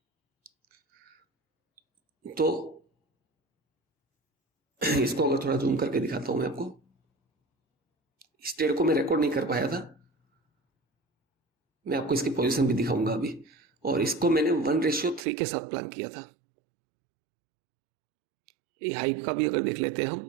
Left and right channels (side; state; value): left; drops out; at 15.2 s